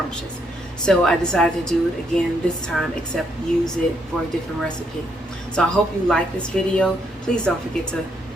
So I decided to do it again this time, except use it for a different recipe. So I hope you like this video. Please don't forget to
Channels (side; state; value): both; normal; correlation 0.74